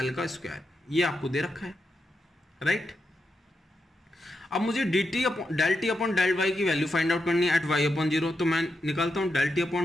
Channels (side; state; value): both; normal; correlation 0.85